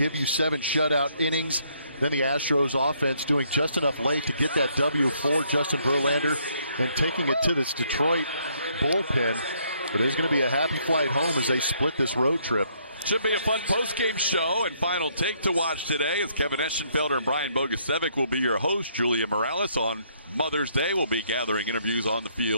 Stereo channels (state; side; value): inverted; both; correlation -0.69